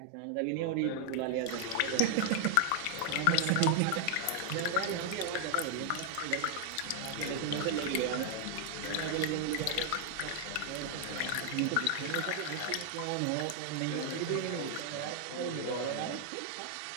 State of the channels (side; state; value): both; different; correlation 0.00